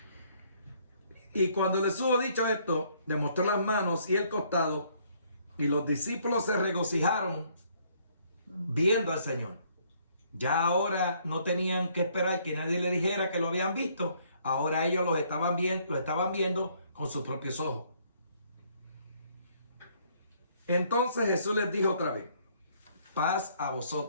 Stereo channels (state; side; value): inverted; both; correlation -0.65